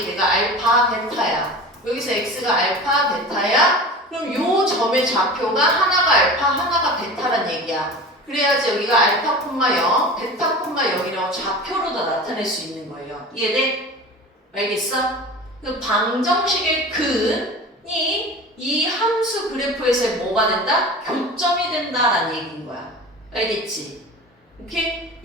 내가 알파, 베타야. 여기서 x가 알파, 베타야. 그럼 요 점의 좌표가 하나가 알파, 하나가 베타란 얘기야. 그래야지 여기가 알파, 0, 베타, 0이라고 좌표로 다 나타낼 수 있는 거예요. 이해돼? 알겠어? 그 방정식의 근이 이 함수 그래프에서 뭐가 된다? 교점이 된다라는 얘기인 거야. 알겠지? 오케이?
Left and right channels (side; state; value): both; normal; correlation 0.35